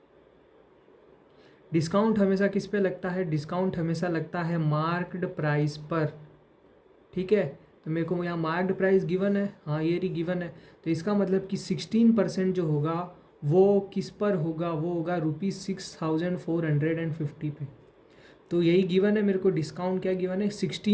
डिस्काउंट हमेशा किस पे लगता है, डिस्काउंट हमेशा लगता है मार्क्ड प्राइस पर। ठीक है, तो मेरे को यहाँ मार्क्ड प्राइस गिवन है, हाँ ये रही गिवन है। तो इसका मतलब कि 16% जो होगा वो किस पर होगा, वो होगा ₹6,450 पे। तो यही गिवन है मेरे को। डिस्काउंट क्या गिवन है,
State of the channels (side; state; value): both; identical; correlation 1.00